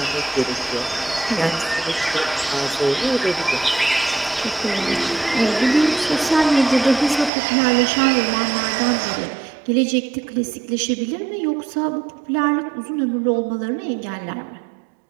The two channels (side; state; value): left; drops out; at 7.3 s